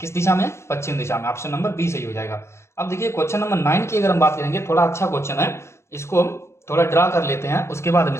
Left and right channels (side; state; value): right; late; 0.13 ms